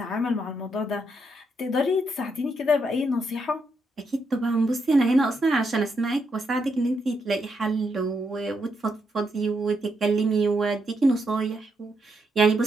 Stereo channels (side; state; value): both; normal; correlation 0.79